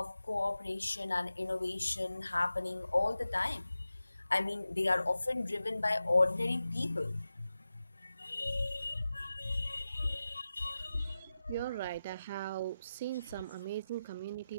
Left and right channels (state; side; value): inverted; both; correlation -0.93